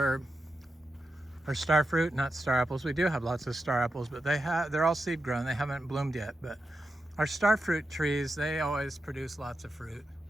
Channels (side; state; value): both; normal; correlation 0.89